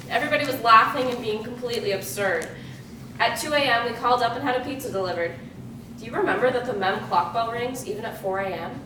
Everybody was laughing and being completely absurd. At 2 a.m., we called up and had a pizza delivered. Do you remember that the MEM clock bell rings even at 4 a.m.?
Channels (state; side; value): identical; both; correlation 1.00